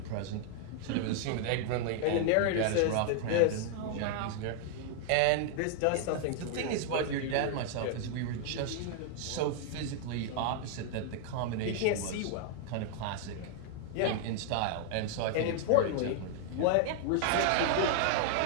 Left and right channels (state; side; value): different; both; correlation 0.00